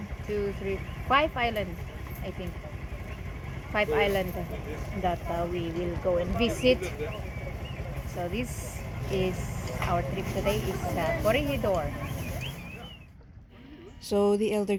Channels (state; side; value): identical; both; correlation 1.00